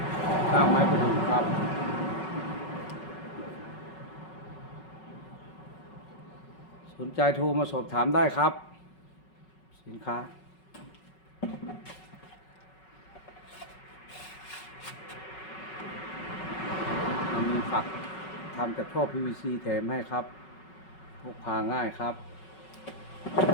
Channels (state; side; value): late; right; 5.4 ms